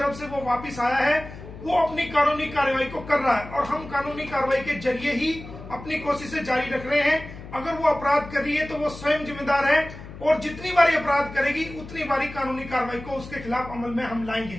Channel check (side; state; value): left; noise; hum, 14 dB below the sound